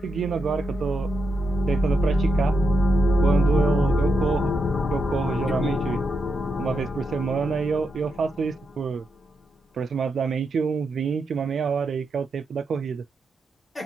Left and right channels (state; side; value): normal; both; correlation 0.84